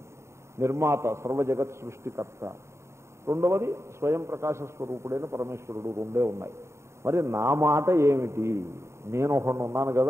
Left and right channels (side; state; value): left; late; 0.13 ms